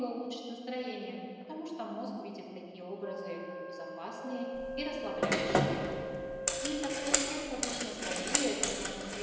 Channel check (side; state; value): both; identical; correlation 1.00